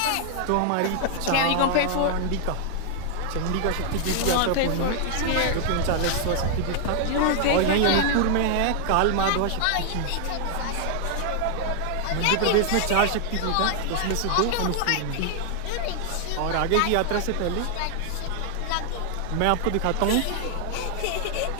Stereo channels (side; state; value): both; different; correlation 0.00